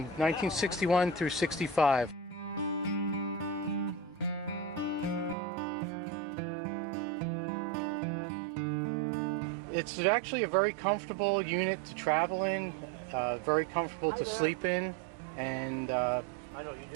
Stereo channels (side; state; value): left; drops out; at 5.4 s